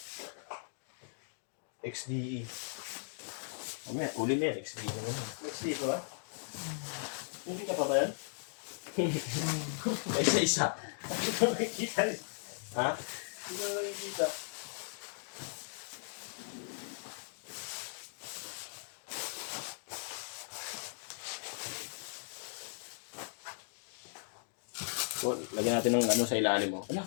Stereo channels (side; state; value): right; silent; digital silence